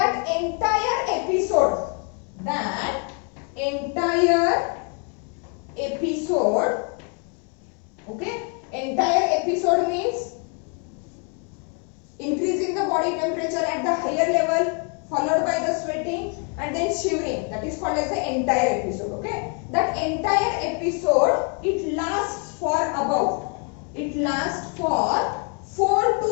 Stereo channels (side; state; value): right; quieter; 37.4 dB